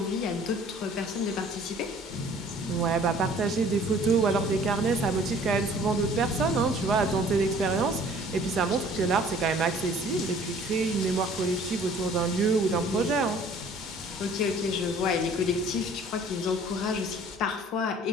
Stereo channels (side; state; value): both; normal; correlation 0.53